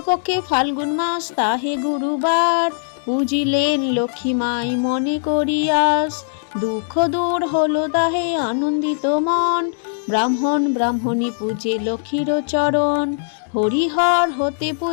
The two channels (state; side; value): silent; right; digital silence